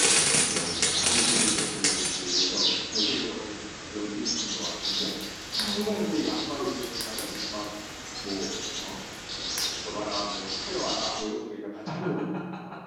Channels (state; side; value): identical; both; correlation 1.00